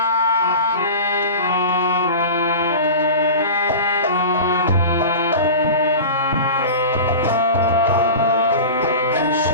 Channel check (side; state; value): both; inverted; correlation -0.31